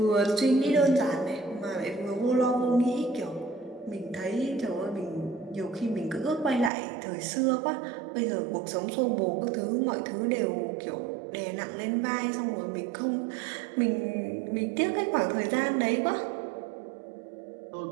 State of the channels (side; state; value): left; drops out; at 6.7 s